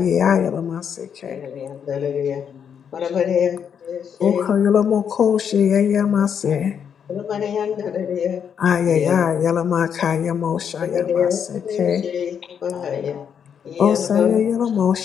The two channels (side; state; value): right; quieter; 7.7 dB